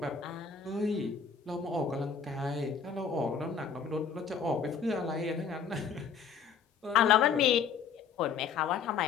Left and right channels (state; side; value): quieter; right; 6.4 dB